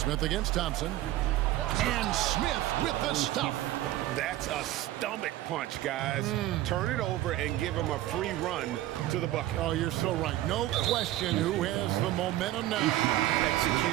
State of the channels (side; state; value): left; quieter; 15.0 dB